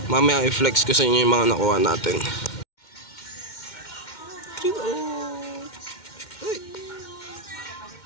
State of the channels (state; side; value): late; right; 2.1 ms